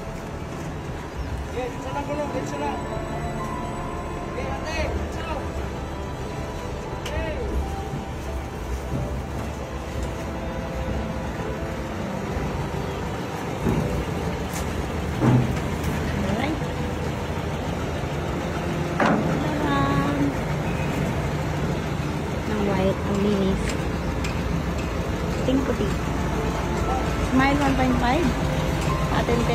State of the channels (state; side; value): identical; both; correlation 1.00